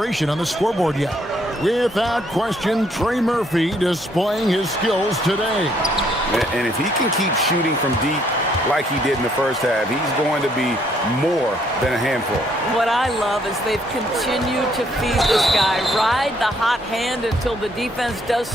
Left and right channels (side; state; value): both; normal; correlation 0.68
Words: on the scoreboard yet. Without question, Trey Murphy displaying his skills today. And if he can keep shooting from deep like he did in the first half, he's going to be more than a handful. What I love is they've continued to feed this guy, ride the hot hand until the defense does